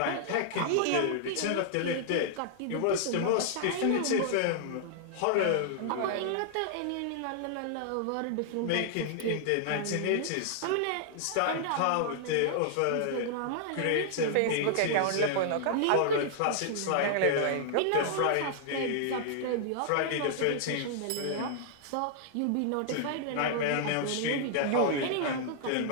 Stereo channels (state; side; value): different; both; correlation -0.01